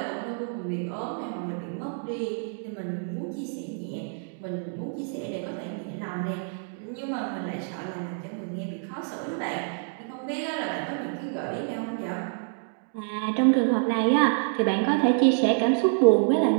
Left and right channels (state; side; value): silent; left; 60 dB below the other